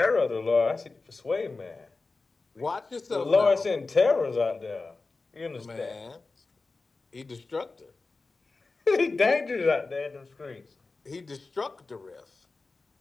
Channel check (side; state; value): right; quieter; 3.7 dB